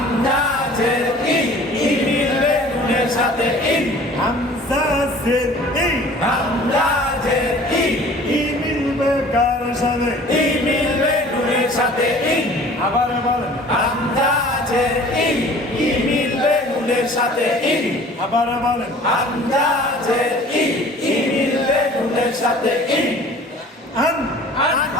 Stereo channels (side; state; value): both; normal; correlation 0.48